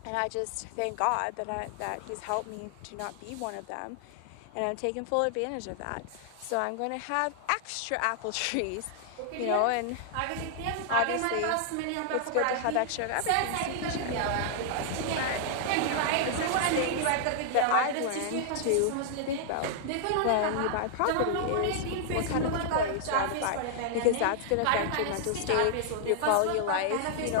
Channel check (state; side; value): different; both; correlation -0.01